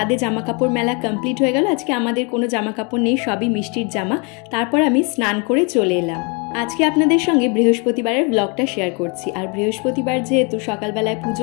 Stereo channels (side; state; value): right; quieter; 33.0 dB